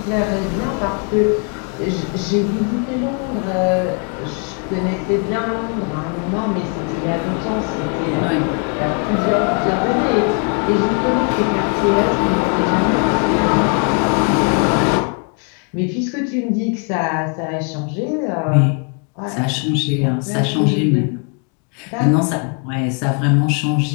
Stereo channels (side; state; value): right; quieter; 39.0 dB